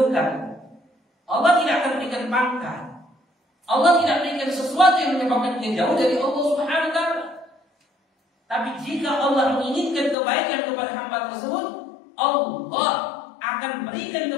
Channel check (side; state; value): right; drops out; at 10.2 s